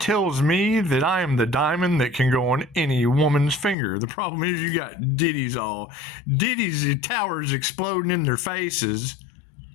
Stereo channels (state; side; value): drops out; right; at 3.8 s